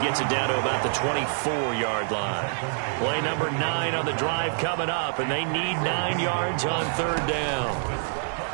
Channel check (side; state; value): left; silent; digital silence